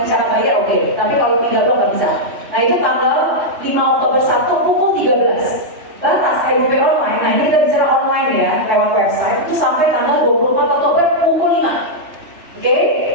cara bayar, oke. Tapi kalau pindah blok nggak bisa. Nah, itu tanggal 5 Oktober 1 pukul 13. Batas EDP online, nah ini kita bicara online ya, lewat website, itu sampai tanggal 24 Oktober pukul 5. Oke,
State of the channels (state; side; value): late; left; 3.1 ms